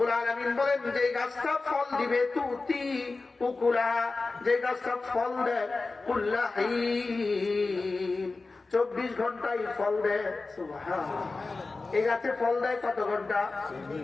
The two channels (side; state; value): right; quieter; 3.7 dB